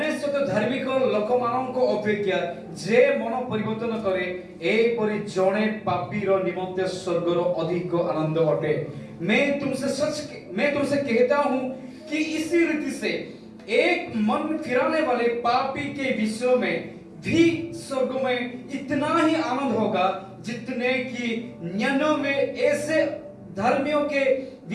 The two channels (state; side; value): identical; both; correlation 1.00